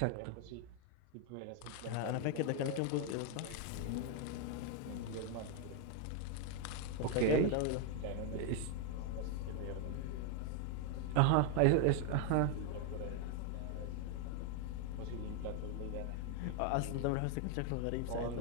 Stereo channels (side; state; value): both; different; correlation 0.01